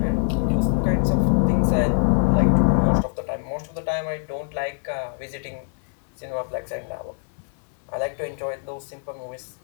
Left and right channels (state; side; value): silent; right; 63 dB below the other